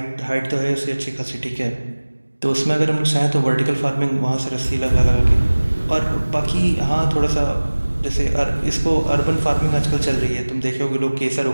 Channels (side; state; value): both; inverted; correlation -1.00